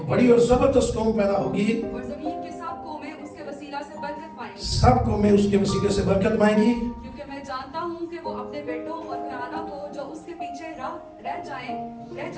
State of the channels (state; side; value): identical; both; correlation 1.00